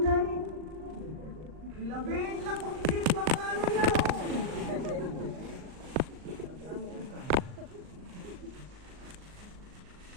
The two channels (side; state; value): left; late; 39 ms